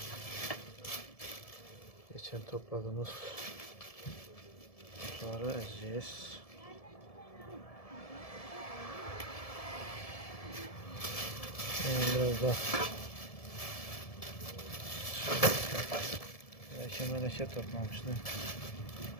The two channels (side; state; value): right; late; 1.7 ms